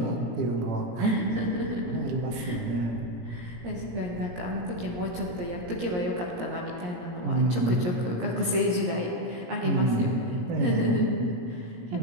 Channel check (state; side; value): late; left; 17 ms